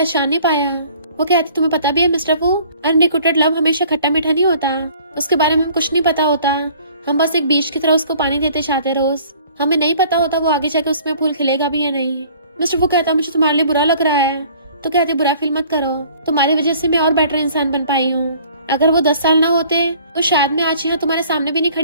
नहीं पाया। वो कहती तुम्हें पता भी है मिस्टर फू अनरिक्रूटेड लव हमेशा खट्टा मीठा नहीं होता, उसके बारे में कुछ नहीं पता होता। हम बस एक बीज की तरह उसको पानी देते जाते रोज, हमें नहीं पता होता वो आगे जाके उसमें फूल खिलेगा भी या नहीं। मिस्टर फू कहता मुझे तुम्हारे लिए बुरा लग रहा है। तो कहते बुरा फील मत करो, तुम्हारी वजह से मैं और बेटर इंसान बन पाई हूँ। अगर वो 10 साल ना होते तो शायद मैं आज यहाँ तुम्हारे सामने भी नहीं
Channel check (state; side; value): inverted; both; correlation -0.53